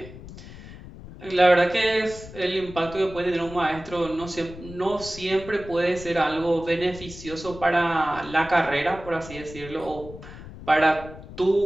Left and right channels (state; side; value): noise; left; rumble, 15 dB below the sound